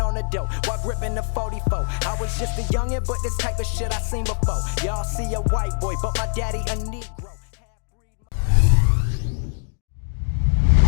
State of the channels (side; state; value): right; silent; digital silence